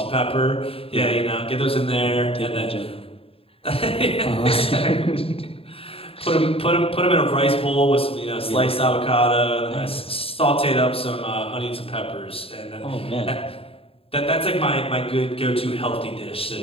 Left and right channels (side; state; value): right; late; 0.27 ms